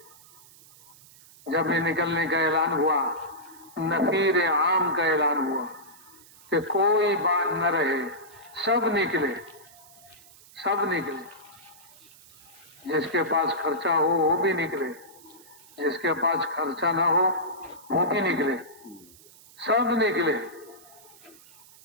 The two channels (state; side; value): noise; right; hiss, 23 dB below the sound